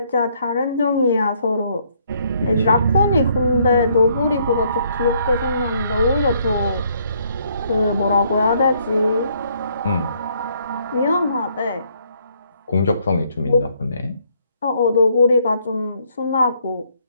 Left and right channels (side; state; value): both; inverted; correlation -0.68